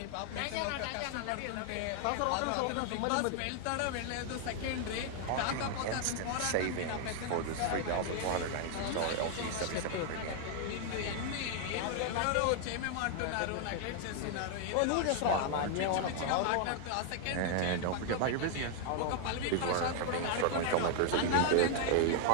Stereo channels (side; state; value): both; different; correlation 0.00